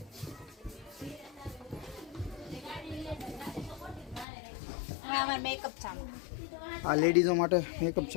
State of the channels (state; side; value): drops out; right; at 4.2 s